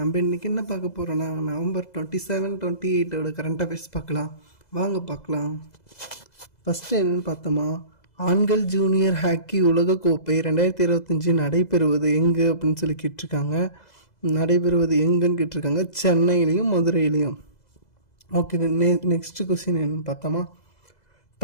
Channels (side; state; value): right; late; 2.0 ms